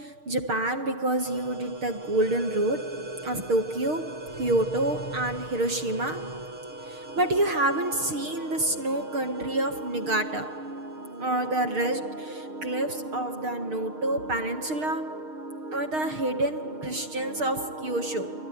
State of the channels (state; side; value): late; left; 6.5 ms